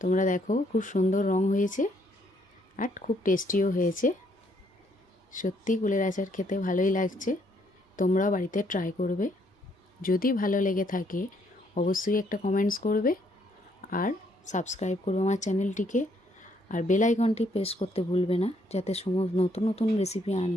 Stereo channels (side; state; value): both; normal; correlation 0.70